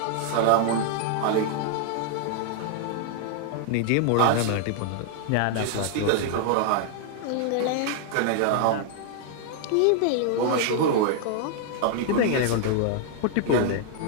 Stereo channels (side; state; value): both; different; correlation 0.00